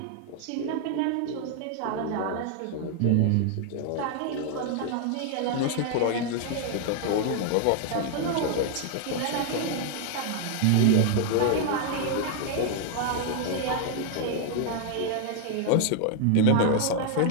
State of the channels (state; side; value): different; both; correlation 0.00